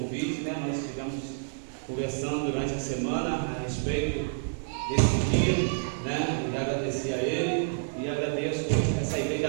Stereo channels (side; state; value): left; silent; digital silence